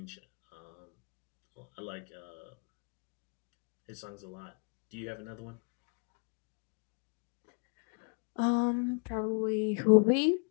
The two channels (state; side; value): quieter; right; 38.7 dB